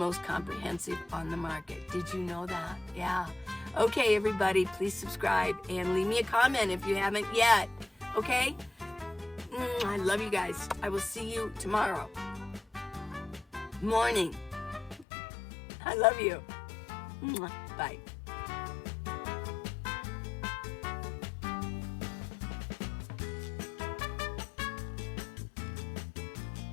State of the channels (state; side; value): drops out; right; at 15.1 s